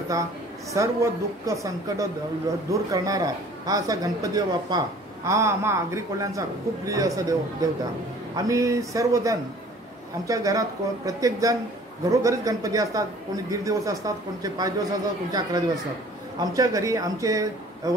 सर्व दुःख संकट दूर करणारा हा असा गणपती बाप्पा हा आम्हा आगरी कोल्ह्यांचा खूप प्रिय असा देवता। आम्ही सर्वजण आमच्या घरात प्रत्येकजण घरोघरीच गणपती असतात। कोणी 1.5 दिवस असतात, कोणचे 5 दिवस असतात, कोणचे 11 दिवस असतात। आमच्या घरी आमचे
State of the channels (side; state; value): both; normal; correlation 0.51